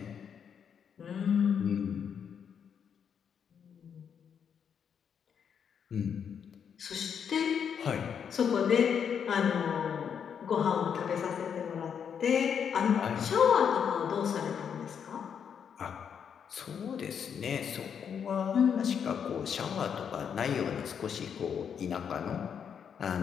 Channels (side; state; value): right; quieter; 7.6 dB